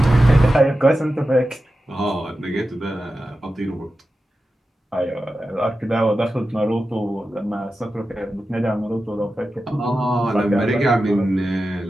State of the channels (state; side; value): normal; both; correlation 0.92